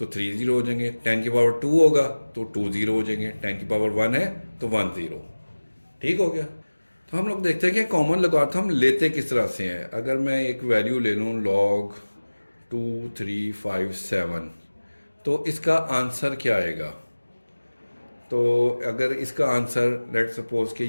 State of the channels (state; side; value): inverted; both; correlation -1.00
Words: 3 जीरो हो जाएंगे, 10 की पावर 2 होगा तो 2 जीरो हो जाएंगे, 10 की पावर 1 है तो 1 जीरो। ठीक हो गया। तो हम लोग देखते हैं कि कॉमन लॉगरिथम लेते किस तरह से हैं। अगर मैं एक वैल्यू ले लूँ लॉग 2357, तो इसका आंसर क्या आएगा। तो अगर इसका आंसर लेट सपोज कि